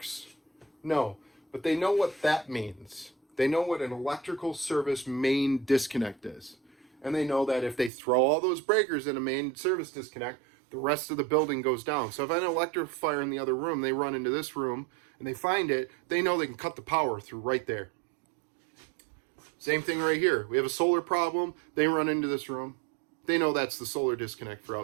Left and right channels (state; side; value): drops out; left; at 7.9 s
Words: No, but they know what that means. They know what an electrical service main disconnect is. And they know that if they throw all those breakers in a main service disconnect, the rest of the building goes down. So if I have an electrical fire in the other room, they run into this room and they find it, they know they can cut the power through right there. Same thing right here. We have a solar problem. They run into this room. They know that's the solar disconnect for